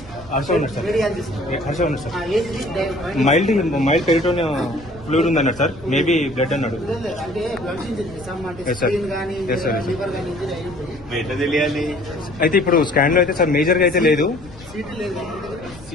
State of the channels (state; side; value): noise; left; rumble, 19 dB below the sound